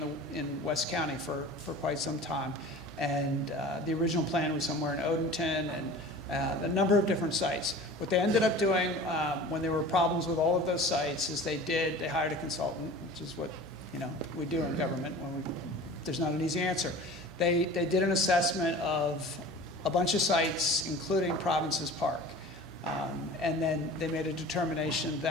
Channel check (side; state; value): both; normal; correlation 0.40